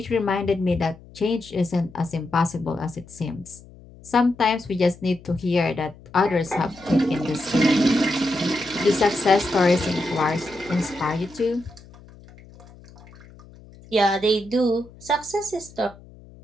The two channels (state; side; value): noise; left; hum, 22 dB below the sound